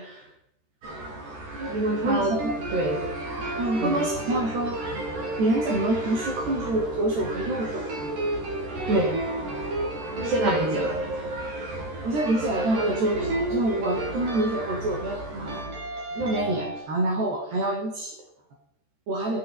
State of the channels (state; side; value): late; left; 13 ms